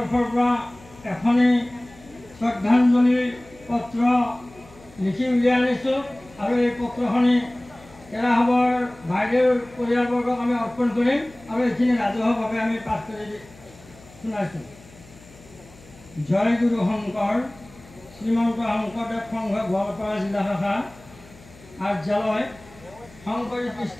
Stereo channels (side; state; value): left; noise; hum, 23 dB below the sound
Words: পৰা এখনি শ্ৰদ্ধাঞ্জলি পত্ৰ লিখি উলিয়াই আনিছোঁ আৰু এই পত্ৰখনি কেৰাসভৰ বাইদেউৰ পৰিয়ালবৰ্গক আমি অৰ্পণ কৰিম আৰু এইখিনি ৰাজহুৱাভাৱে আমি পাঠ কৰি শুনাইছোঁ। জয় গুৰু শংকৰ, শ্ৰীমন্ত শংকৰদেৱ সংঘ গোৱালপাৰা জিলা শাখা কাৰ্যালয়, শংকৰী